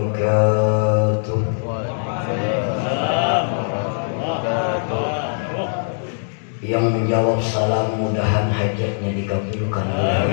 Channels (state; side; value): silent; right; digital silence